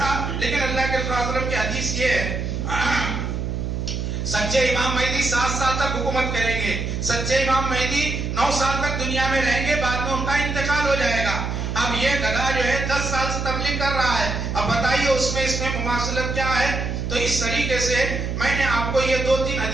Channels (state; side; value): noise; right; hum, 3 dB below the sound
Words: لیکن اللہ کے رسول صلی اللہ علیہ وسلم کی حدیث یہ ہے سچے امام مہدی 7 سال تک حکومت کریں گے. سچے امام مہدی 9 سال تک دنیا میں رہیں گے, بعد میں ان کا انتقال ہو جائے گا. اب یہ گدھا جو ہے 10 سال سے تبلیغ کر رہا ہے, اب بتائیے اس میں مماثلت کیا ہے. تو اس طریقے سے میں نے آپ کو یہ 2-3